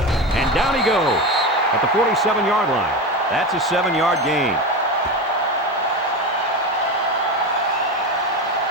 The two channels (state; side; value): normal; both; correlation 0.21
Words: And down he goes at the 47-yard line. That's a 7-yard gain.